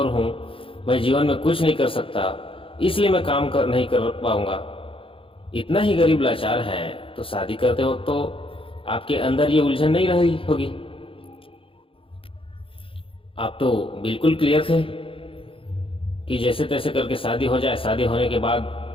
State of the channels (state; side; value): late; right; 0.26 ms